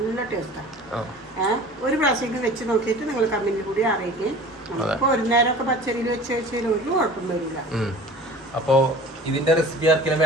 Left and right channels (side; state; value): both; normal; correlation 0.42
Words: ടേസ്റ്റാണ്. ഒരു പ്രാവശ്യം വെച്ച് നോക്കിയിട്ട് നിങ്ങൾ കമ്മിന് കൂടി അറിയിക്കും. അപ്പോൾ ഒരു നേരമൊക്കെ പച്ചരിയിൽ വെച്ച് വെച്ചാൽ ഒരു കുഴപ്പം വരില്ല. അപ്പോൾ ഇതിന്റെ റെസിപ്പി ആർക്കെങ്കിലും